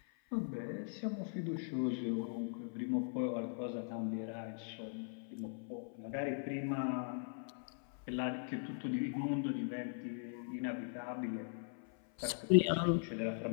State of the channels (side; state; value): right; silent; 51 dB below the other